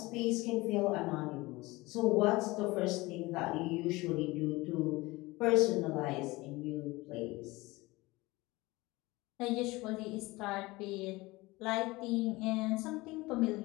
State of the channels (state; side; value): quieter; right; 21.4 dB